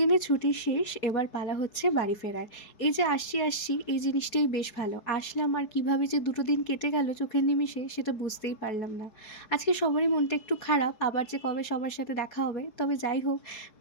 ছুটি শেষ, এবার পালা হচ্ছে বাড়ি ফেরার। এই যে আসছি এই জিনিসটাই বেশ ভালো। আসলাম আর কিভাবে যে দুটো দিন কেটে গেল চোখের নিমিষে সেটা বুঝতেই পারলাম না। আজকে সবারই মনটা একটু খারাপ, আবার যে কবে সবার সাথে দেখা হবে। তবে যাই হোক,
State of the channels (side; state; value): right; late; 4.7 ms